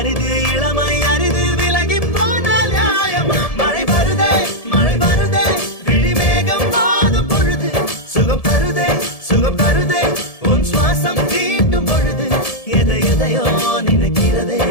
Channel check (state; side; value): late; right; 1.7 ms